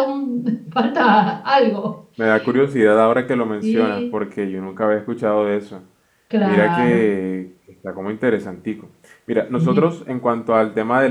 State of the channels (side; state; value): both; identical; correlation 1.00